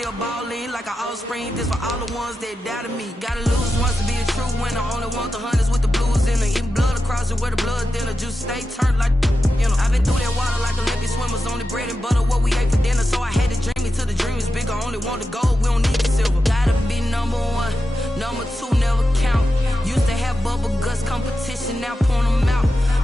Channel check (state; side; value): normal; both; correlation 0.90